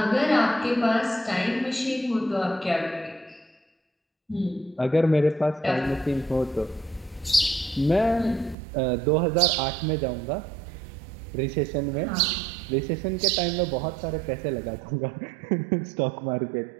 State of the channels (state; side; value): drops out; left; at 8.6 s